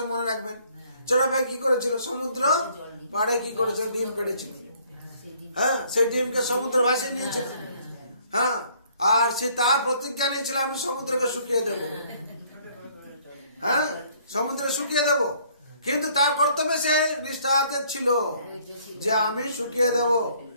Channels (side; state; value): both; inverted; correlation -0.62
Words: মনে রাখবেন। চড়াই পাখি কি করেছিল, সমুদ্র পাড়ে কি করেছিল, ডিম পেড়েছিল। হ্যাঁ, সেই ডিমকে সমুদ্র ভাসিয়ে নিয়েছিল। হ্যাঁ, আর সে তার প্রতিজ্ঞা নিয়েছিল আমি সমুদ্রকে শুকিয়ে দেব। হ্যাঁ, সমুদ্রে শুকিয়ে দেব। কিন্তু তার কর্তব্যে সে নিষ্ঠাতে ছিল যে আমি শুকিয়ে দেব,